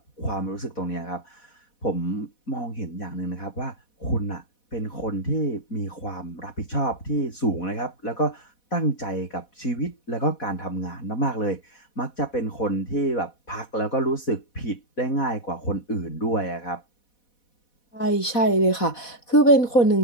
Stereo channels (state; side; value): late; right; 4.1 ms